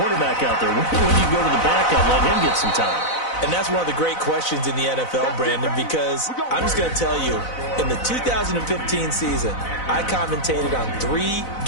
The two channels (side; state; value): right; late; 4.0 ms